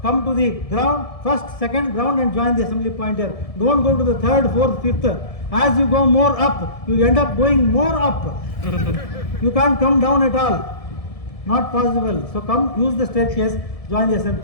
come to the ground, first, second ground and join the assembly point here. Don't go to the third, fourth, fifth. As you go more up, you end up going more up. You can't come down at all. Not possible. So come, use the staircase, join the assembly.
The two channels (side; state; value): right; late; 1.7 ms